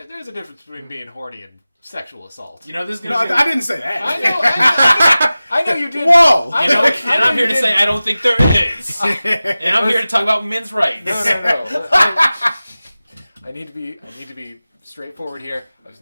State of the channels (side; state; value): both; inverted; correlation -0.96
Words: There's a difference between being horny and sexual assault. You know, this is going to... I didn't say that. I know you did. Whoa! And I'm here to say I don't think there is. And I'm here to talk about men's rights. No. I need to be straightforward here. I was